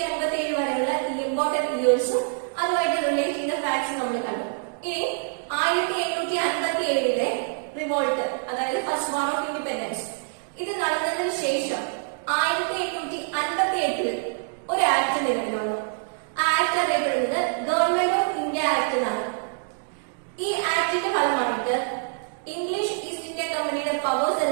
വരെയുള്ള ഇമ്പോർട്ടന്റ് ഇയേഴ്സും അതുമായിട്ട് റിലേറ്റ് ചെയ്ത ഫാക്ട്സും നമ്മൾ കണ്ടു. ഇനി 1757 റിവോൾട്ട്, അതായത് ഫസ്റ്റ് വാർ ഓഫ് ഇൻഡിപെൻഡൻസ്, ഇത് നടന്നതിന് ശേഷം 1858 ഒരു ആക്ട് നിലവിൽ വന്നു. ആ ആക്ട് അറിയപ്പെടുന്നത് ഗവൺമെന്റ് ഓഫ് ഇന്ത്യ ആക്ട് എന്നാണ്. ഈ ആക്ടിന്റെ ഫലമായിട്ട് ഇംഗ്ലീഷ് ഈസ്റ്റ് ഇന്ത്യ കമ്പനിയുടെ പവേഴ്സ്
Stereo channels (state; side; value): silent; left; digital silence